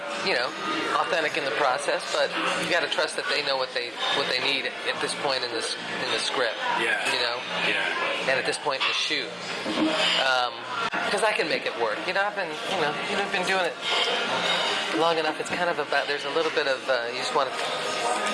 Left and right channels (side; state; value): both; identical; correlation 1.00